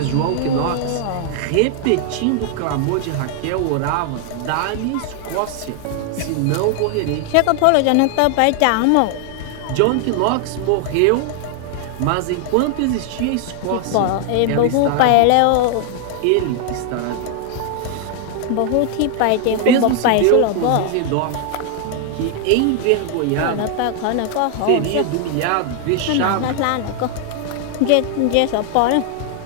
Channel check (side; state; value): both; different; correlation 0.00